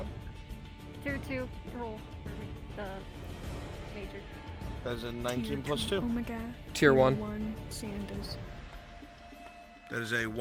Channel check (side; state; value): both; identical; correlation 1.00